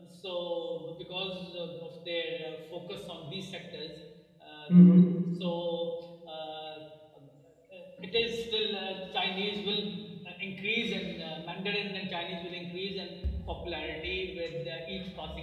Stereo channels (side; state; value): both; identical; correlation 1.00